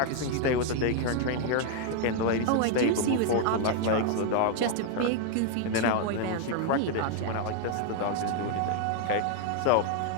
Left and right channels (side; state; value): both; different; correlation 0.00